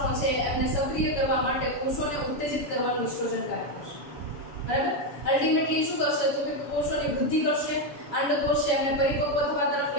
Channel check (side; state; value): right; late; 7.2 ms